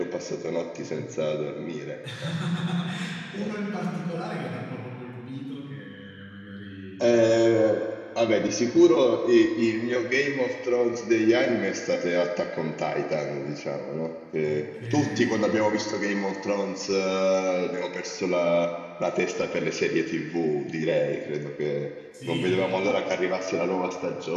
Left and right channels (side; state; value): both; identical; correlation 1.00